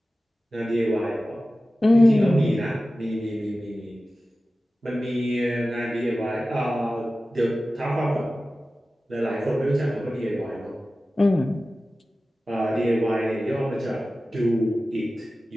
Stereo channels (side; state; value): both; normal; correlation 0.95